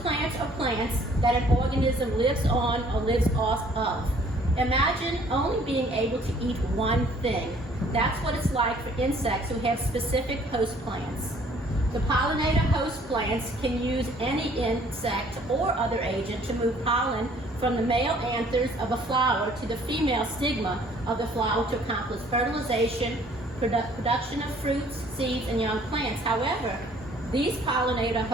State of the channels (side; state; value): both; normal; correlation 0.58